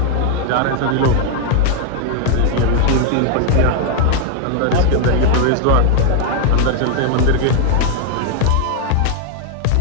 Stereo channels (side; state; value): both; different; correlation 0.00